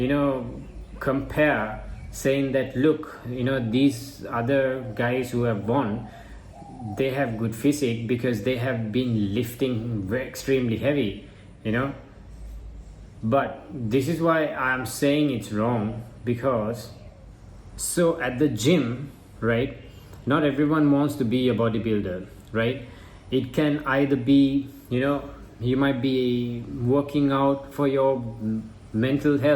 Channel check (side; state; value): both; identical; correlation 1.00